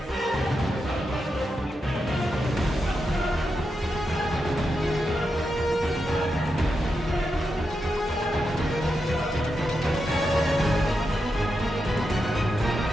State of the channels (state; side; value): normal; both; correlation 0.86